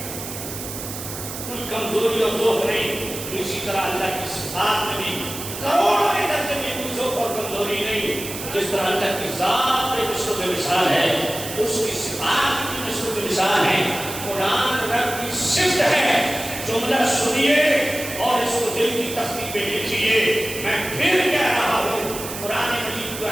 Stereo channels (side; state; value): right; noise; hiss, 9 dB below the sound